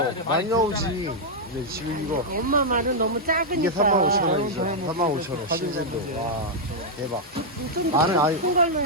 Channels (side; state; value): both; normal; correlation -0.04